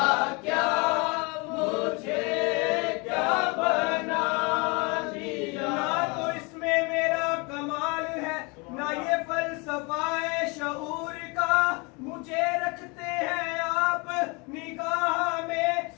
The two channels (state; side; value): quieter; right; 29.1 dB